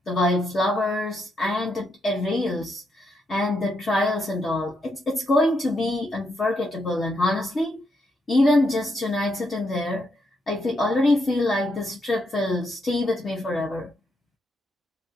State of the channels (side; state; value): both; normal; correlation 0.79